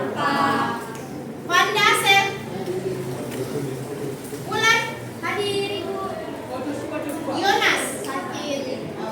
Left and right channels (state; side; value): identical; both; correlation 1.00